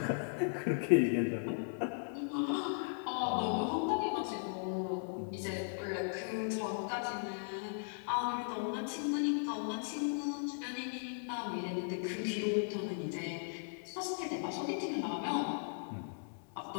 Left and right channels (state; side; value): silent; right; 53 dB below the other